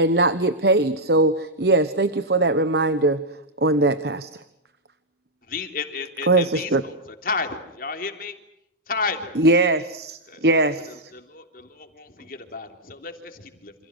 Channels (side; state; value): both; normal; correlation -0.04